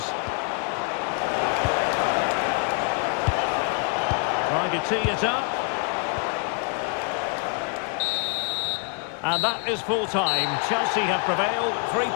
Trying to tee it up. And that is full time. Chelsea have prevailed. 3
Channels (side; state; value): right; quieter; 36.5 dB